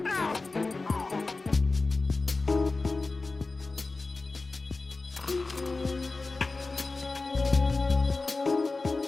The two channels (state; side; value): quieter; right; 3.6 dB